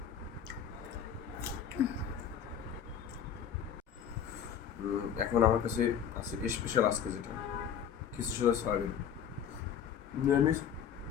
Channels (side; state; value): right; quieter; 8.4 dB